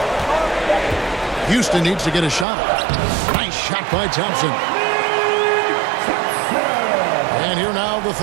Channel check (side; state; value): left; drops out; at 2.5 s